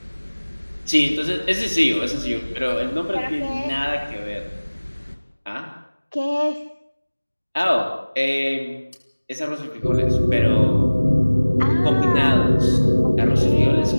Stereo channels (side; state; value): both; inverted; correlation -1.00